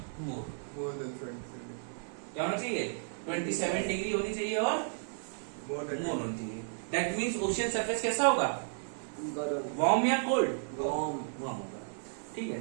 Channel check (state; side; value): silent; left; 55 dB below the other